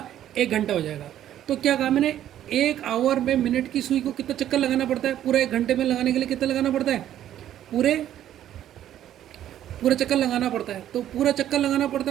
1 घंटा हो जाएगा। तो क्या कहा मैंने? 1 आवर में मिनट की सुई को कितना चक्कर लगाना पड़ता है? पूरा 1 घंटे में लगाने के लिए कितना लगाना पड़ता है? पूरे पूरा चक्कर लगाना पड़ता है। तो पूरा चक्कर लगाना पड़ता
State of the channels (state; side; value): quieter; left; 11.6 dB